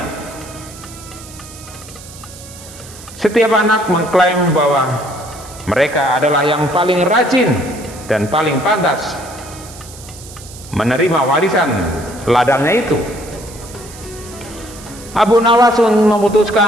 Setiap anak mengklaim bahwa mereka adalah yang paling rajin dan paling pantas menerima warisan ladangnya itu. Abu Nawas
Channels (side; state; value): right; noise; hiss, 17 dB below the sound